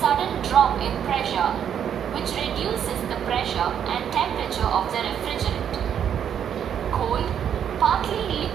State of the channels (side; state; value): left; quieter; 8.8 dB